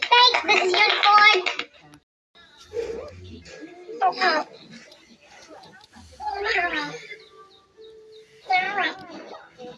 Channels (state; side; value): identical; both; correlation 1.00